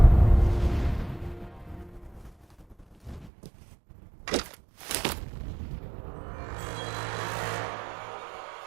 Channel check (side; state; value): left; drops out; at 3.3 s